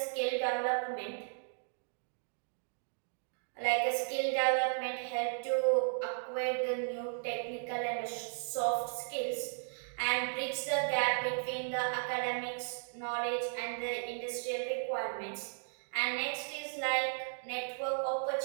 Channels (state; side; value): silent; left; digital silence